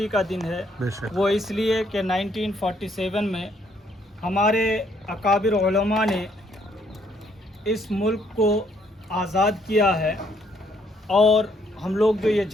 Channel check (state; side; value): normal; both; correlation 0.69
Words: का दिन है। वो इसलिए कि 1947 में हमारे अकाबिर उलमा ने इस मुल्क को आज़ाद किया है। और हम लोग जो ये